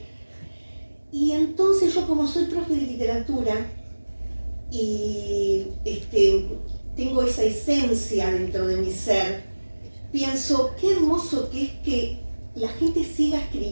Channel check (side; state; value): both; inverted; correlation -1.00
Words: Y entonces yo, como soy profe de literatura y tengo esa esencia dentro de mi ser, pienso qué hermoso que es que la gente siga